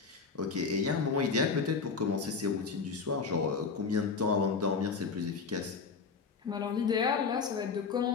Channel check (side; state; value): right; quieter; 5.0 dB